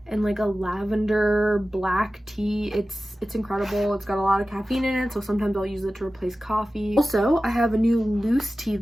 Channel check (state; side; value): normal; both; correlation 0.95